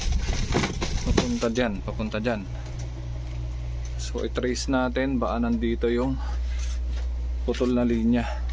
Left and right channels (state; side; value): identical; both; correlation 1.00